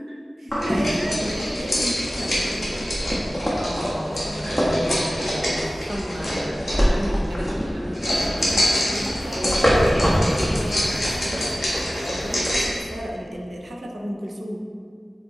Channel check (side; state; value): both; normal; correlation 0.96